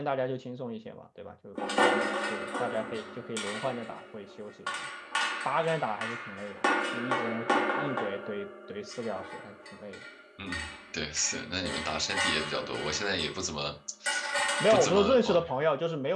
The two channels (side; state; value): both; identical; correlation 1.00